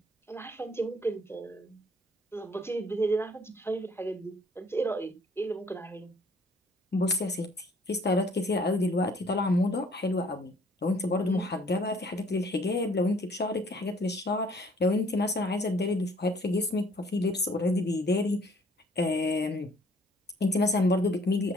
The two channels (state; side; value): normal; both; correlation 0.59